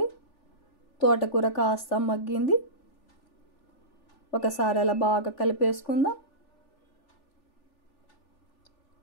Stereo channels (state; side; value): late; right; 3.4 ms